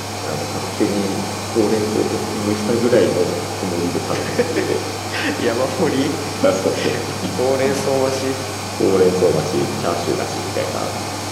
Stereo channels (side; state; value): both; identical; correlation 1.00